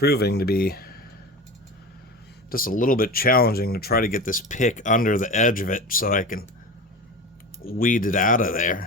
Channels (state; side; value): normal; both; correlation 0.30